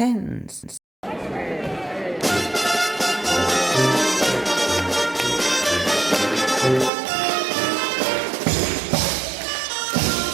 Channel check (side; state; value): left; drops out; at 6.9 s